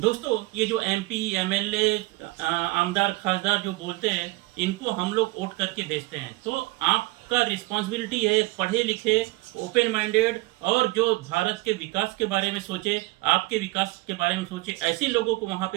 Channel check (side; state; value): left; quieter; 21.9 dB